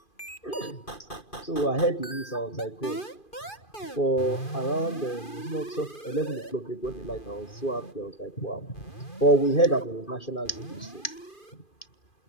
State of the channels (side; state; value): right; late; 2.4 ms